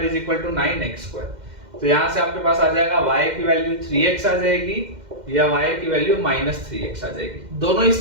is equal to 9x square. तो यहां से आपके पास आ जाएगा y की वैल्यू 3x आ जाएगी या y की वैल्यू -3x आ जाएगी। दोनों ही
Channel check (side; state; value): left; late; 2.1 ms